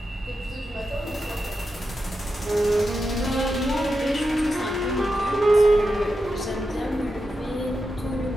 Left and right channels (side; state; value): both; normal; correlation 0.88